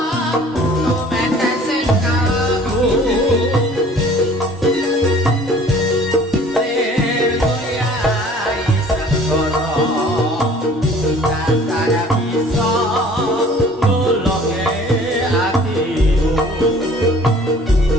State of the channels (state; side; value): normal; both; correlation 0.51